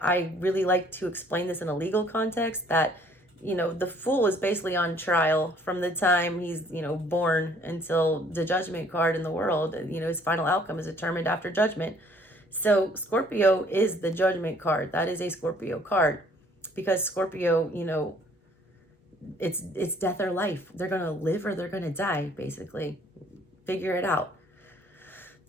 really like to explain this in a legal context that, the fool is basically on trial from the time he's, born until the judgment card in the world. His final outcome is determined after judgment. So Scorpio is the judgment card. That is a Scorpio card because Scorpio, it's death or life. They're going to live or they're going to die, basically. Figure it out.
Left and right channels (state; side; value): normal; both; correlation 0.59